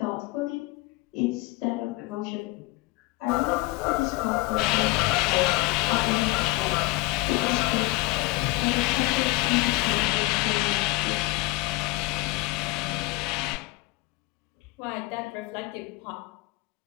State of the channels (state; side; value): quieter; right; 21.3 dB